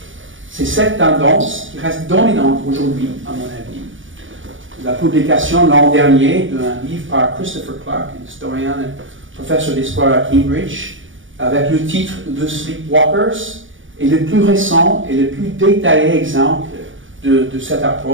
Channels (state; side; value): late; left; 0.57 ms